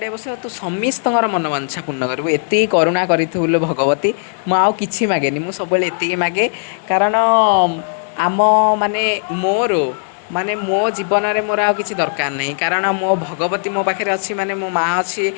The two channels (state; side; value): silent; right; digital silence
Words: ବସିବ ତୁ ସମସ୍ତଙ୍କର ମନବାଞ୍ଛା ପୂର୍ଣ୍ଣ କରିବୁ। ଏତିକି କରୁଣା କରିଥିବୁ ଲୋ ଭଗବତୀ। ମୁଁ ଆଉ କିଛି ମାଗେନି ମୁଁ ସବୁବେଳେ ଏତିକି ମାଗେ। କାରଣ ଆମ ମାନେ ମୋର ମାନେ ମୋ ଜୀବନରେ ମୋର ଆଉ କିଛି ଦରକାର ନାହିଁ। କାରଣ ମୋ ଭଗବତୀ ମୋ ପାଖରେ ଅଛି ମାନେ ମୋ ମାଆ ଅଛି